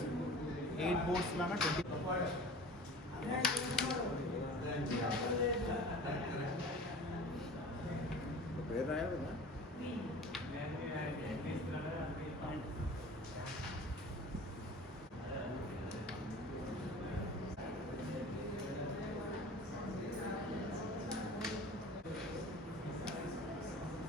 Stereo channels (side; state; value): both; normal; correlation 0.41